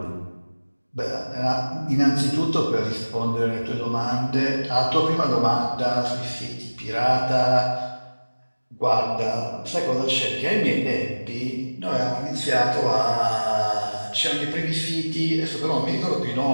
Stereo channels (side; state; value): both; inverted; correlation -1.00